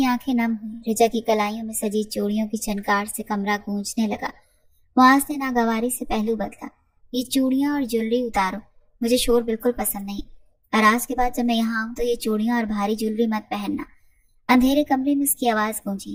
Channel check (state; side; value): identical; both; correlation 1.00